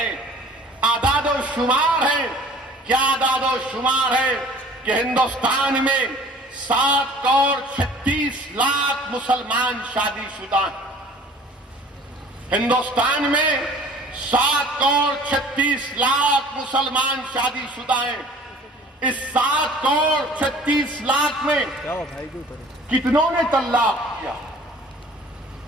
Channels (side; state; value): both; normal; correlation 0.49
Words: اعداد و شمار ہیں۔ کیا اعداد و شمار ہے کہ ہندوستان میں 7 کروڑ 36 لاکھ مسلمان شادی شدہ ہیں۔ ہندوستان میں 7 کروڑ 36 لاکھ مسلمان شادی شدہ ہیں۔ اس 7 کروڑ 36 لاکھ میں کتنوں نے طلاق کیا؟